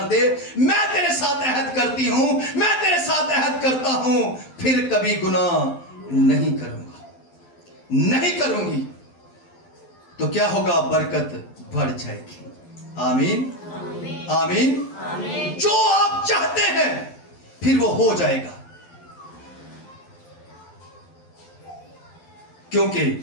दे, मैं तेरे साथ अहद करती हूं, मैं तेरे साथ अहद करता हूं, फिर कभी गुनाह नहीं करूंगा, नहीं करूंगी, तो क्या होगा? बरकत बढ़ जाएगी। आमीन आमीन। जो आप चाहते हैं फिर वो हो जाएगा, क्योंकि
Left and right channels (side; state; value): right; late; 12 ms